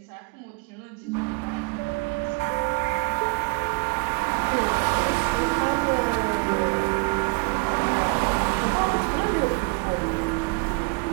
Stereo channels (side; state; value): left; quieter; 30.0 dB